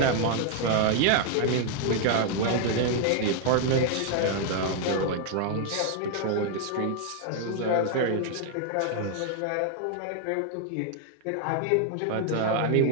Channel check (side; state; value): both; different; correlation 0.00